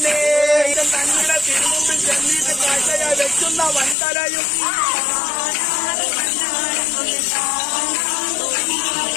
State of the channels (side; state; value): right; drops out; at 4.0 s